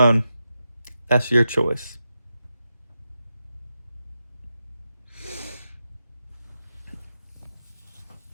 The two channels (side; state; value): both; inverted; correlation -0.88